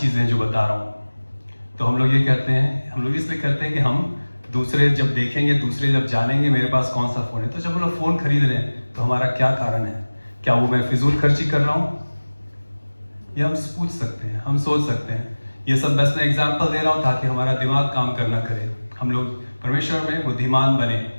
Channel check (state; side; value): inverted; both; correlation -1.00